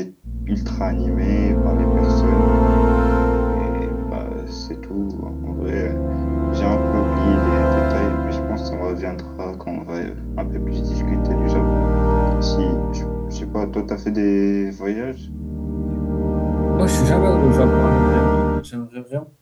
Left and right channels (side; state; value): both; identical; correlation 1.00